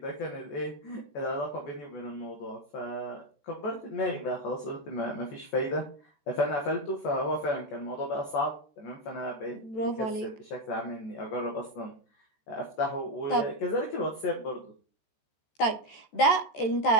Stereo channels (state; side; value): late; right; 14 ms